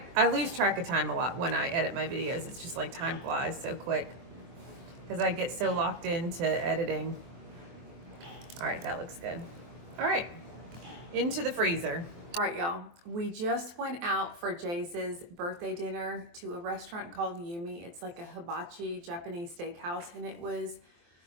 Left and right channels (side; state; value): left; late; 23 ms